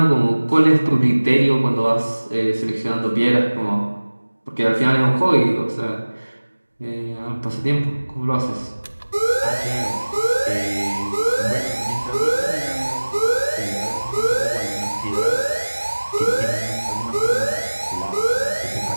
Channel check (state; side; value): inverted; both; correlation -1.00